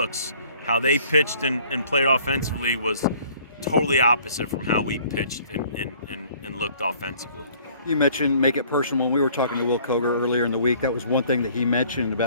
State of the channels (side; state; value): both; inverted; correlation -0.56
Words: How they pitched and played offensively was totally opposite from how we pitched and looked offensively. You mentioned make it personal. When we were talking to Will Koger earlier in the week, that was one thing that he mentioned